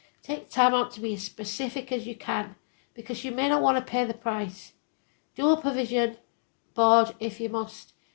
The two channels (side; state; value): right; silent; digital silence